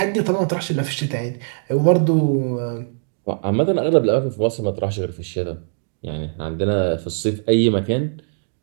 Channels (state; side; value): silent; left; digital silence